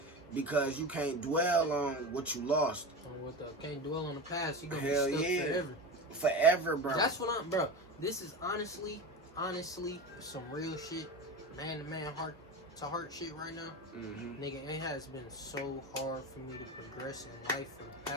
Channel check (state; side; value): normal; both; correlation 0.25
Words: because you can't dwell on what you lost. Can't dwell on the past. You gonna be stuck forever. Forever, bro. That's what I'm, bro. This is honestly some real shit. Man to man, heart to heart shit right now. Nigga, it has been so hard for me to progress in life for the